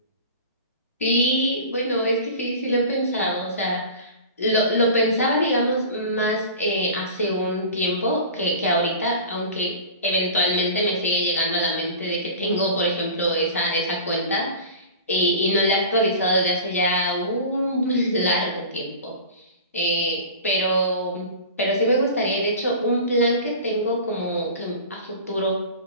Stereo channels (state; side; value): inverted; both; correlation -0.37